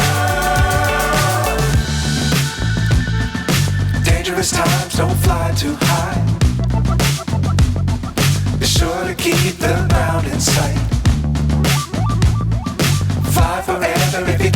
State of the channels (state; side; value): identical; both; correlation 1.00